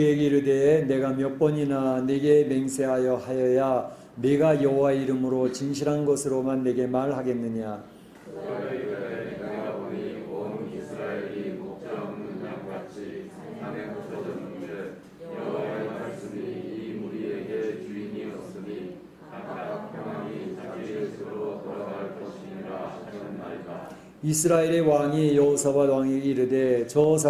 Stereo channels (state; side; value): identical; both; correlation 1.00